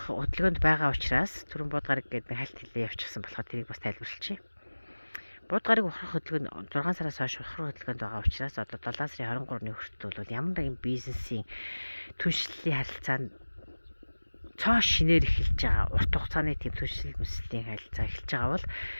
хөдөлгөөнд байгаа учраас түрэн будгарыг гэдэг хальт хэлээ явчихсан болохоор тэрийг бас тайлбарлачих. Будгарыг ухрах хөдөлгөөнд 6 сараас хойш ухрах хөдөлгөөнд байгаа учраас одоо 7 сарын 23-ны хүртэл бол ямар нэгэн бизнесийн түншлэлийн харилцаанд цоо шинээр эхэлж байгаа урт хугацааны тийм түншлэл мэслийн харилцаа эхэлж байгаа бол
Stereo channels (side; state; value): both; inverted; correlation -1.00